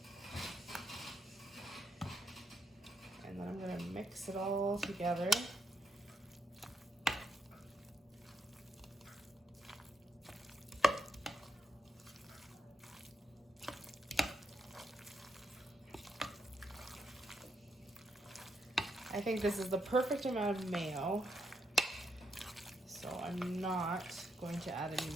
And then I'm gonna mix it all together. I think this is the perfect amount of mayo, so I'm not going to add any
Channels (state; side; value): normal; both; correlation 0.79